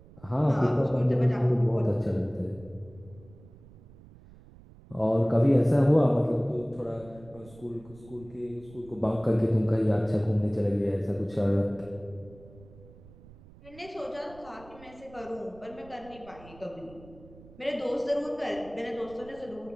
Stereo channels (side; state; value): right; noise; rumble, 22 dB below the sound